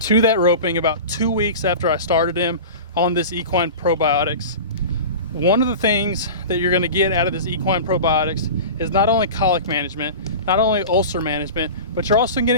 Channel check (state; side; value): inverted; both; correlation -0.32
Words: to that roping about 2 weeks after I started him on this Equine Probiotics. One of the things that you're gonna get out of this Equine Probiotics is not only colic management, not only ulcer management, but you're also